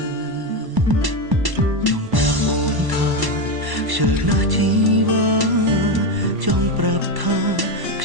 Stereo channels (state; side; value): late; left; 1.1 ms